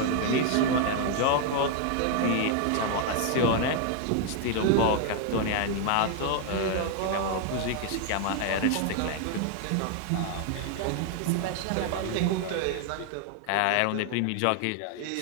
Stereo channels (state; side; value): different; both; correlation 0.00